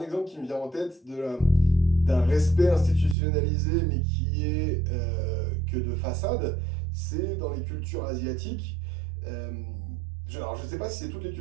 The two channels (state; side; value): drops out; left; at 3.2 s